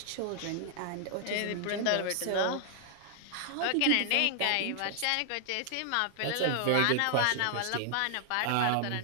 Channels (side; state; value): both; different; correlation 0.00